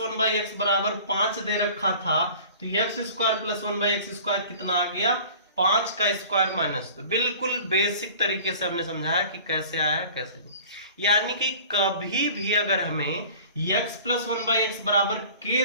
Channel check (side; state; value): both; inverted; correlation -0.44